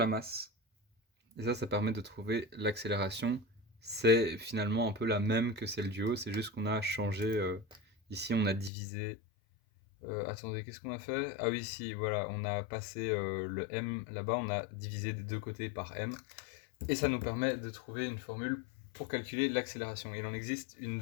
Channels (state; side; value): drops out; right; at 8.7 s